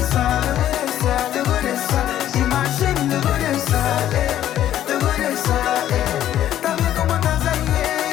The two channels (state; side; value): quieter; right; 11.9 dB